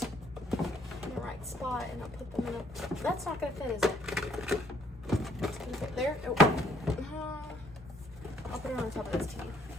in the right spot and I'll put them in a... That's not gonna fit, is it? It's gonna fit there. Oh. I'll put it on top of this tea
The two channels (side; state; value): both; normal; correlation 0.66